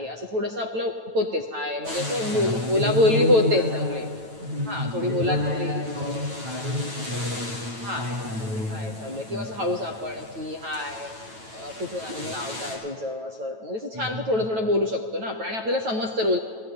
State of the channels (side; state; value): left; late; 9.1 ms